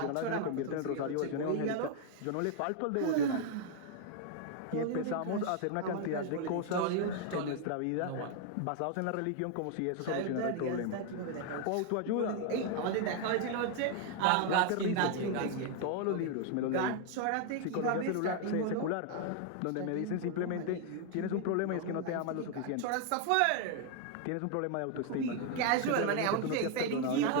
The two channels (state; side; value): different; both; correlation 0.00